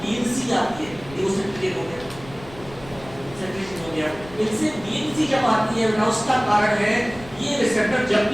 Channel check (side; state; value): left; noise; rumble, 18 dB below the sound